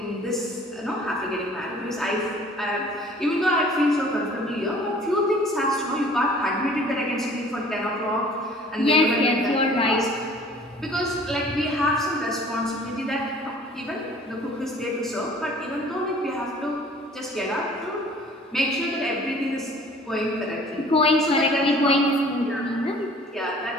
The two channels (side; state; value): both; normal; correlation 0.51